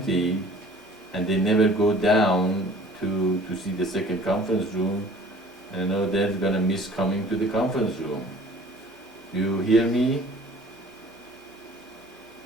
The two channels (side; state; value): both; normal; correlation 0.49